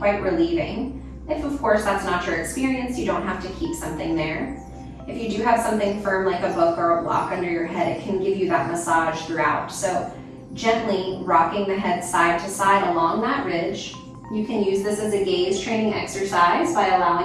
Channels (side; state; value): both; identical; correlation 1.00